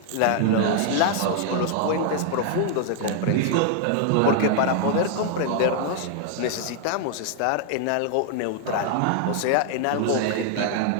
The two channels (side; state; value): both; different; correlation 0.00